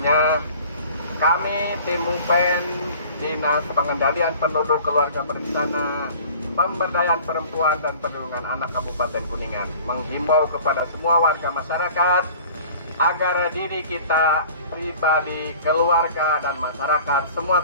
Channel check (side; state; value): both; inverted; correlation -0.46